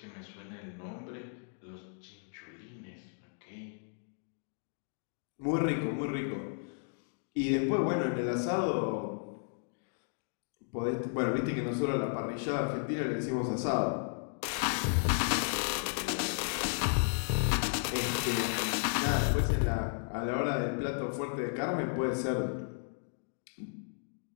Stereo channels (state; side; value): silent; right; digital silence